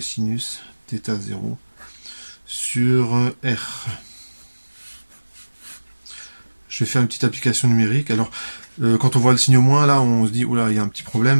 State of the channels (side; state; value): both; inverted; correlation -1.00